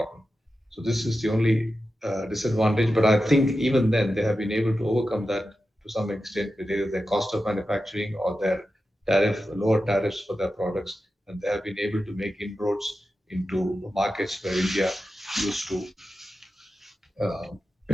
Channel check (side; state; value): both; normal; correlation 0.91